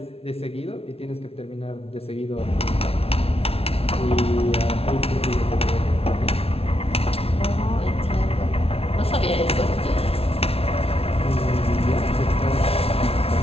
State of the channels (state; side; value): late; right; 0.28 ms